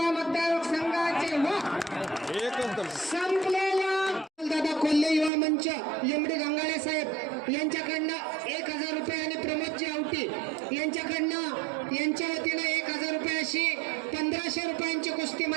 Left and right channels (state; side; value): drops out; left; at 5.3 s